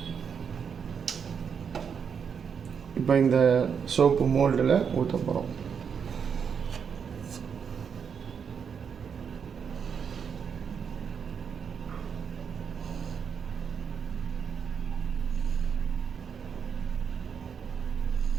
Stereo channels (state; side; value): quieter; left; 6.9 dB